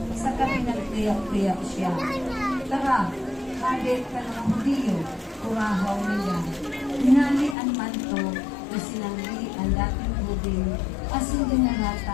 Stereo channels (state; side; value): drops out; right; at 7.6 s